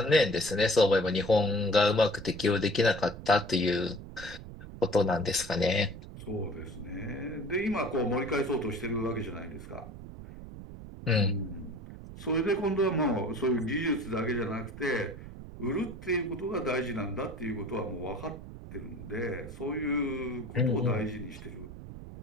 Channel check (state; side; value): noise; right; rumble, 13 dB below the sound